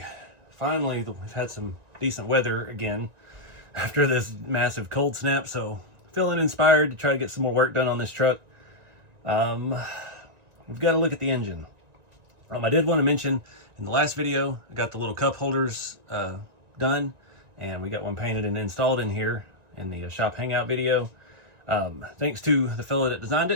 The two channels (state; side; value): late; left; 1.9 ms